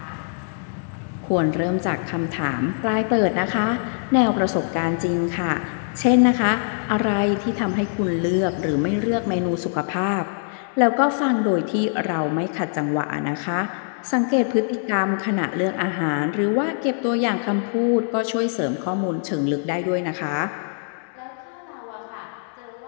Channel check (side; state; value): right; silent; digital silence